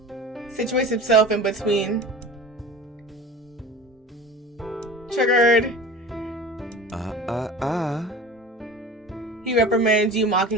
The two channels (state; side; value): normal; both; correlation 0.36